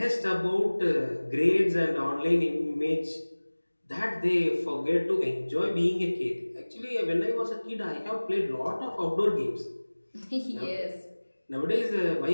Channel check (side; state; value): both; inverted; correlation -1.00